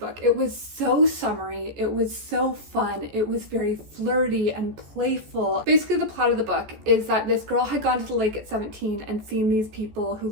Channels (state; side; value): late; left; 14 ms